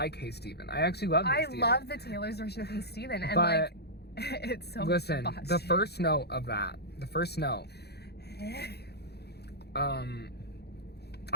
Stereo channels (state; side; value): late; right; 0.48 ms